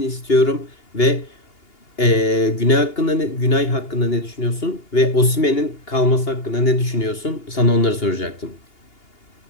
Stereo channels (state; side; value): late; right; 2.8 ms